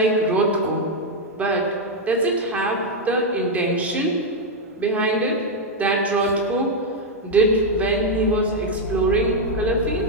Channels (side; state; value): both; normal; correlation 0.01